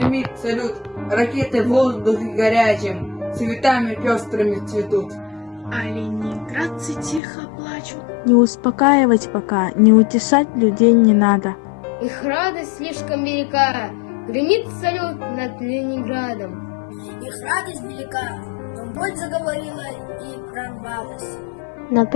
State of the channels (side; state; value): right; drops out; at 7.2 s